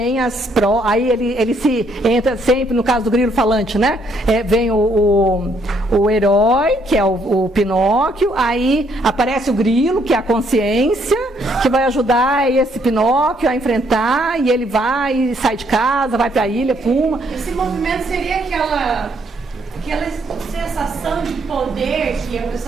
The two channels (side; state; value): both; normal; correlation 0.70